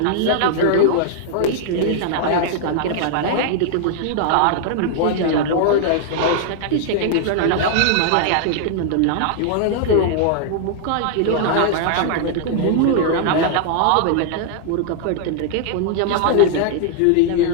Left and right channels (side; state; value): both; different; correlation 0.00